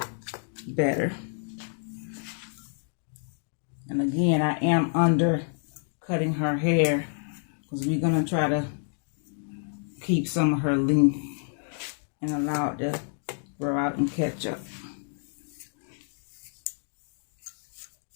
better. And again, I am undercutting her hair because we're going to try to keep some of her length and allow it to grow out and catch up.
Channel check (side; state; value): right; silent; digital silence